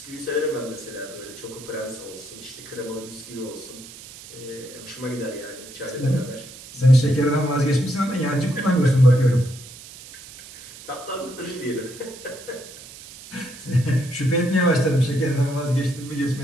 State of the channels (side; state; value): right; noise; hiss, 17 dB below the sound